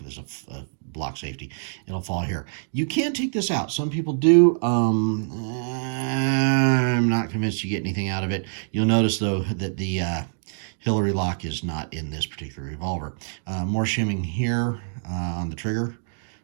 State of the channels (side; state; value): left; silent; digital silence